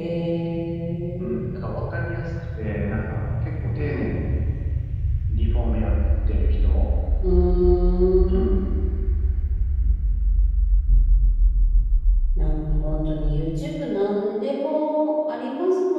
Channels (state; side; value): identical; both; correlation 1.00